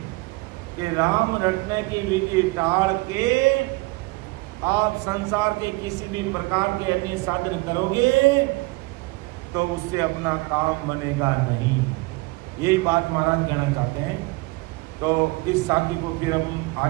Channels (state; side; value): quieter; left; 24.4 dB